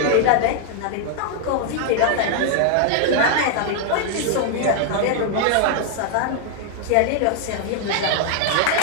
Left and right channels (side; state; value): both; different; correlation 0.00